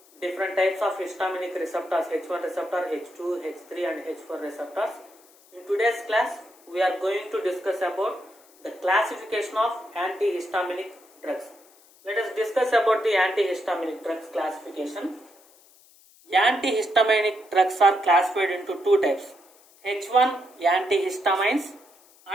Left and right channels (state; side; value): noise; left; hiss, 28 dB below the sound